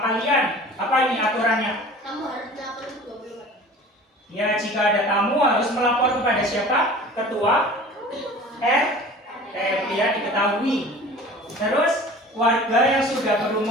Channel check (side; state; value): both; normal; correlation 0.42